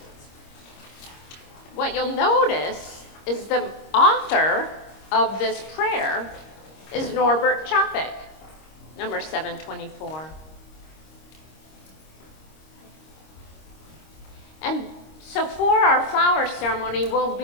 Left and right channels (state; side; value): late; right; 26 ms